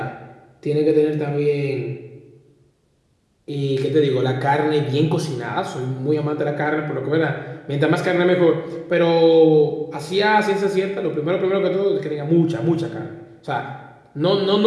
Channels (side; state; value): both; identical; correlation 1.00